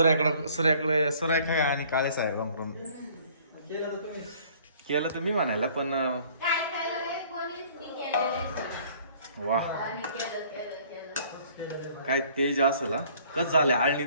आणि काळे साहेबांकडून केलं तर मी म्हणायला पण वा काय तेज असेल. कस झालं आळणी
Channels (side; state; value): both; inverted; correlation -0.56